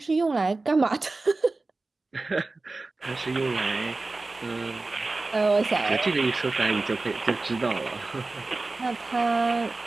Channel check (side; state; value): left; quieter; 3.4 dB